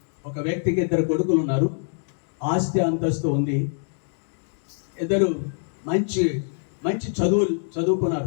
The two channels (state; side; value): silent; right; 62 dB below the other